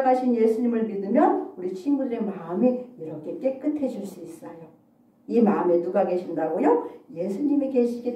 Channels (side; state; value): both; identical; correlation 1.00